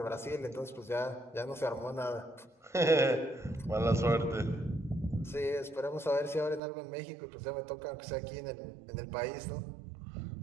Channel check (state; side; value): drops out; left; at 6.6 s